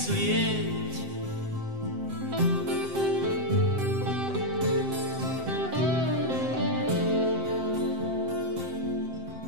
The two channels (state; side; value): late; left; 7.7 ms